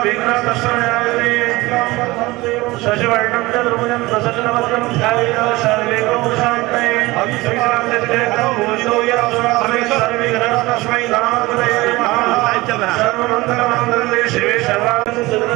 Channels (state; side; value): quieter; left; 20.7 dB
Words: शशिवर्णं चतुर्भुजं प्रसन्नवदनं ध्यायेत् सर्वे शान्तये तस्मै सर्वमङ्गलमाङ्गल्ये शिवे